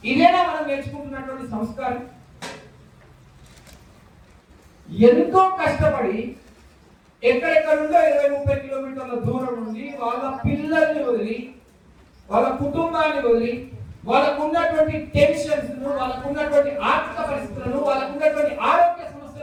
ఇదేనా మనం నేర్చుకుంటున్నటువంటి సంస్కారం? ఎంతో కష్టపడి ఎక్కడెక్కడ నుండో 20-30 కిలోమీటర్ల దూరం నుండి వాళ్ళ పిల్లల్ని వదిలి, వాళ్ళ కుటుంబాన్ని వదిలి, వాళ్ళకు ఉన్నటువంటి టెన్షన్స్, వాళ్ళకు ఉన్నటువంటి ఆర్థిక పరిస్థితులను, వాళ్ళకు ఉన్నటువంటి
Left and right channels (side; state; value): both; identical; correlation 1.00